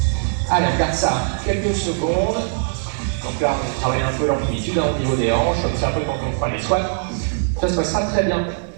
Allez, on garde ça quelques secondes. Donc là, on travaille un peu l'amplitude au niveau des hanches, comme c'est un peu quand on fera les squats. Ça se passera très bien.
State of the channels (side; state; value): left; silent; digital silence